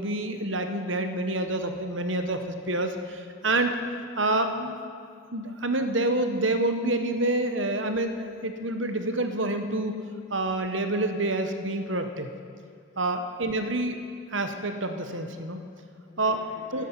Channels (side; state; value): both; normal; correlation 0.01